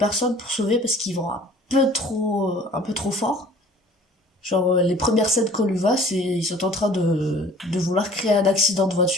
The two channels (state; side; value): normal; both; correlation 0.49